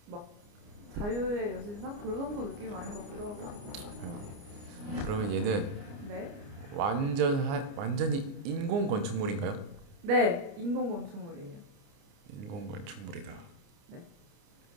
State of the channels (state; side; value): late; left; 29 ms